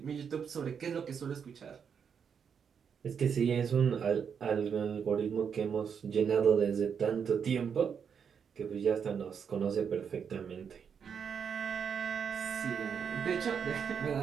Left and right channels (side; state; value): left; quieter; 7.0 dB